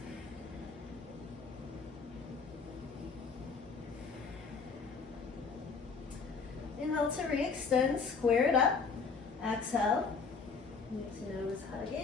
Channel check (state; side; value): quieter; right; 5.0 dB